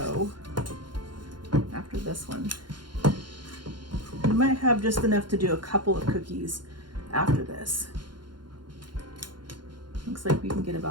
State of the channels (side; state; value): left; late; 0.71 ms